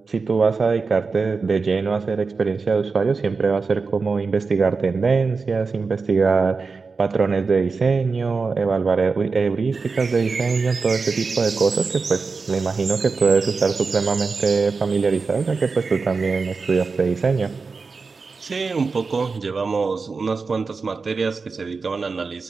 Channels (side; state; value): left; quieter; 4.5 dB